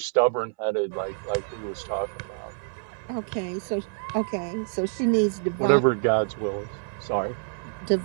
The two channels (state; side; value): silent; left; 60 dB below the other